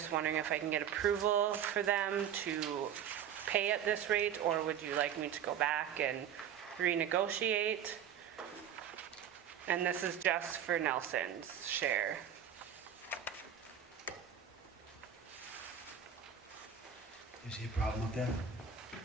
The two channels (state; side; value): quieter; left; 8.8 dB